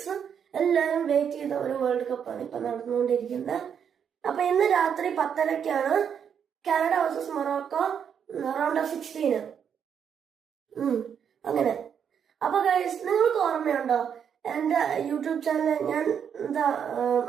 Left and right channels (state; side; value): quieter; left; 7.8 dB